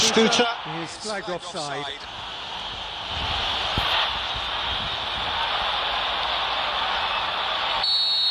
is flagged offside.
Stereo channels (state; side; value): identical; both; correlation 1.00